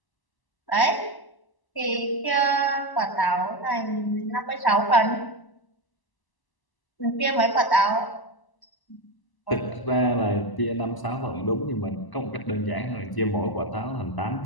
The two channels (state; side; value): late; right; 1.0 ms